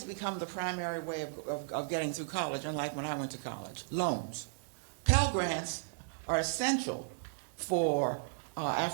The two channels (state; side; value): silent; left; digital silence